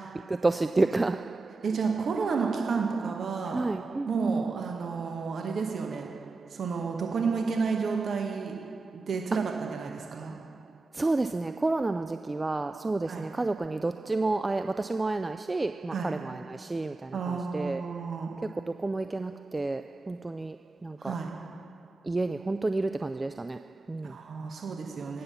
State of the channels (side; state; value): left; quieter; 3.4 dB